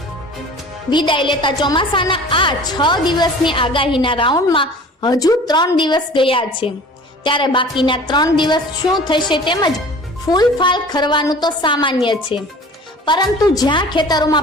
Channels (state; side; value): normal; both; correlation 0.44